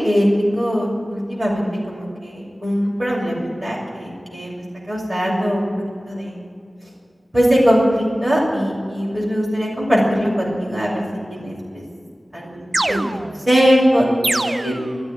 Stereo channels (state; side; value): normal; both; correlation 0.96